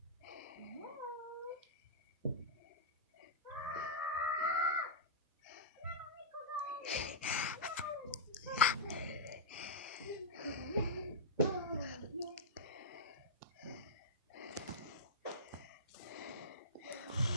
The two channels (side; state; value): both; normal; correlation -0.13